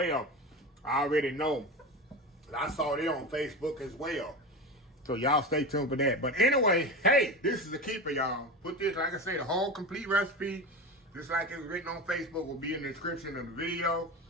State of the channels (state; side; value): normal; both; correlation 0.25